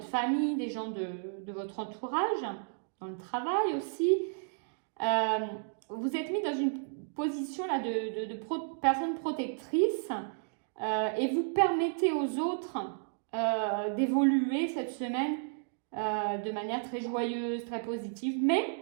famille, des gens de votre entourage, dans le travail aussi. Vous êtes mis dans une position là de personne protectrice et vous permettez aux autres d'évoluer cette semaine de manière très joyeuse, très positive. Mais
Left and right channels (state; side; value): silent; left; digital silence